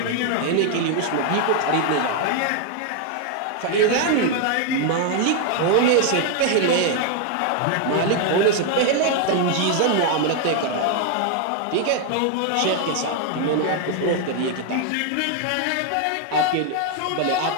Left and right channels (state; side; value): different; both; correlation 0.00